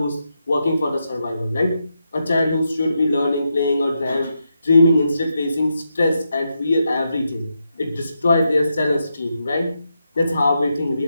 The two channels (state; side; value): inverted; both; correlation -0.84